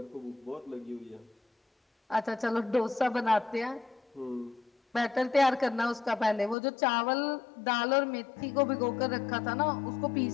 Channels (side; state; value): right; drops out; at 6.6 s